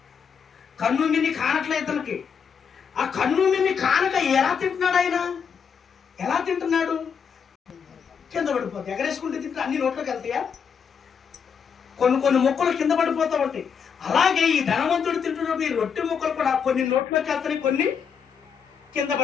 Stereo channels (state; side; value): quieter; right; 6.8 dB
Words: కన్ను మిన్ని కానట్లేదు ఇతనికి. ఆ కన్ను మిన్ని కానక ఎలా తింటున్నాడు ఆయన? ఎలా తింటున్నాడు? కింద పడిపోతాయి. ఎగరేసుకుంటే తింటే అన్ని నోట్లోకి వెళ్తాయా? కొన్ని మొక్కలు కింద పడిపోతూ ఉంటాయి. అలాగే ఈ ధనవంతుడు తింటున్నప్పుడు ఈ రొట్టె మొక్కలు కూడా కొన్ని నోట్లోకి వెళ్తాయి, కొన్ని కింద